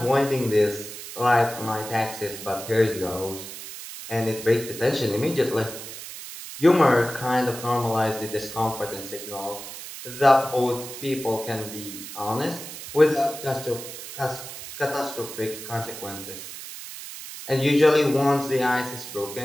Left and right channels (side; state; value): right; noise; hiss, 11 dB below the sound